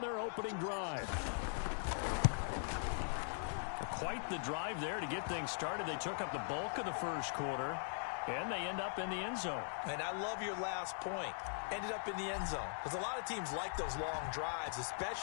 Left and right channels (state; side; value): silent; right; digital silence